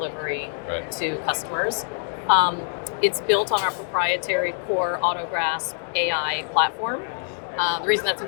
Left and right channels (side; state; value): right; silent; 62 dB below the other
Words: to customers. It's built on our proprietary core AutoGrasp AI platform. The reason that's